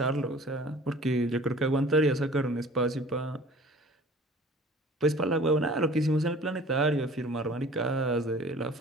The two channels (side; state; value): both; normal; correlation 0.47